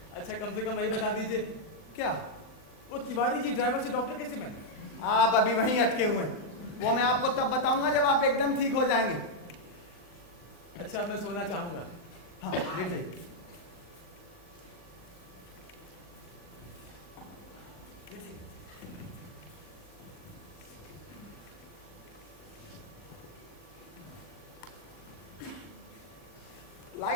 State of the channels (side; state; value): right; late; 39 ms